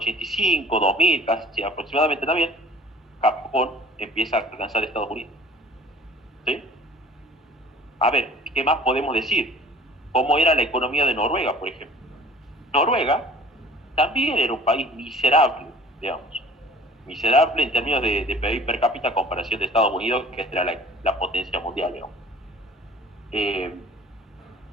2000, casi aproximadamente también, Japón empieza a alcanzar Estados Unidos. ¿Sí? A ver, ¿qué más podemos decir? ¿Cómo era la economía de Noruega, por ejemplo? Noruega también era un país miserable, digamos. Miserable en términos de PIB per cápita a comparación de Estados Unidos, que era la potencia mundial, digamos.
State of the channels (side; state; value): both; normal; correlation 0.49